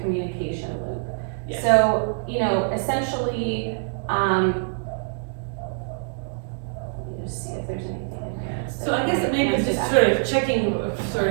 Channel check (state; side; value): silent; left; digital silence